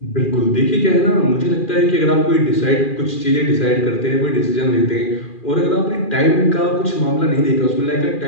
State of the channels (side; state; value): right; late; 2.4 ms